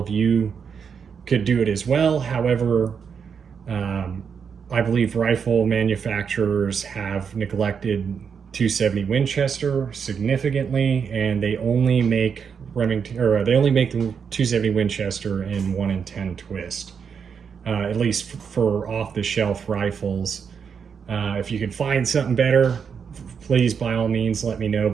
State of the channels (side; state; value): left; quieter; 6.6 dB